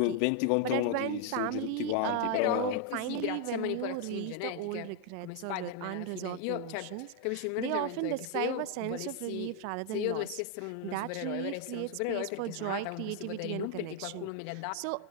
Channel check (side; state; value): both; different; correlation 0.00